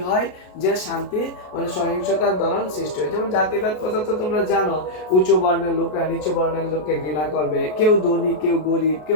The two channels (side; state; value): right; late; 33 ms